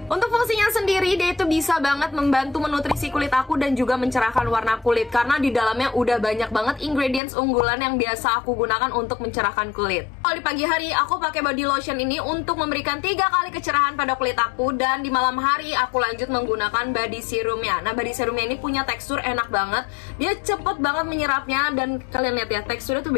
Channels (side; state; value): right; drops out; at 7.2 s